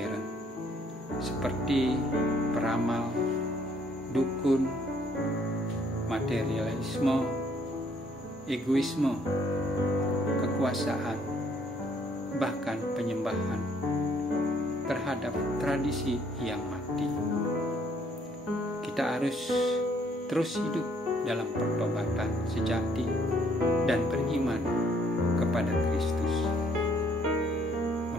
seperti peramal, dukun, materialisme, egoisme, kekuasaan, bahkan penyembahan terhadap tradisi yang mati. Kita harus terus hidup dalam pertobatan sejati dan beriman kepada Kristus,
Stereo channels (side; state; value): both; normal; correlation 0.65